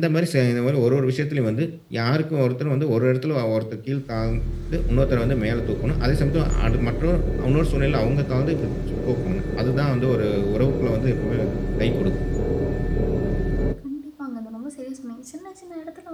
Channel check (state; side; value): identical; both; correlation 1.00